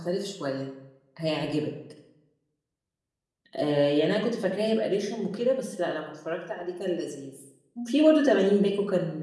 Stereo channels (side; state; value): both; identical; correlation 1.00